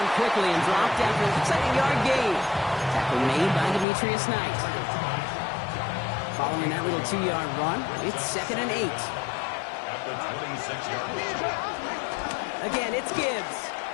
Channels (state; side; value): drops out; right; at 3.9 s